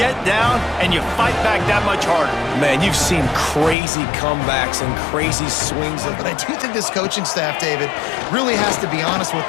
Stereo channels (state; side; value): drops out; right; at 3.8 s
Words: down and you fight back that much harder. Man, you've seen crazy comebacks and crazy swings. But I do think this coaching staff, David, really has to be honest with